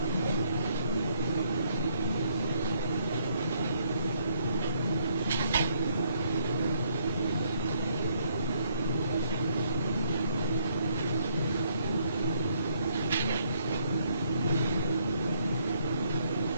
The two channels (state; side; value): inverted; both; correlation -0.68